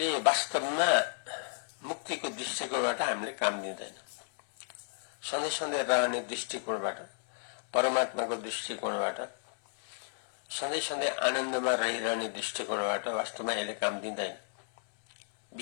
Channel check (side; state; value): right; silent; 56 dB below the other